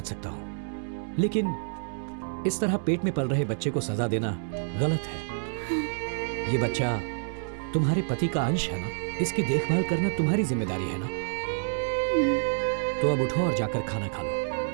सकता हूँ, लेकिन इस तरह पेट में पल रहे बच्चे को सजा देना गलत है। ये बच्चा तुम्हारे पति का अंश है ना, इसकी देखभाल करना तुम्हारी जिम्मेदारी है ना। तो अब उठो और जाकर खाना खा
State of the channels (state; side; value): silent; left; 59 dB below the other